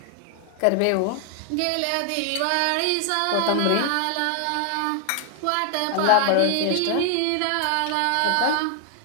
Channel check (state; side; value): different; both; correlation 0.00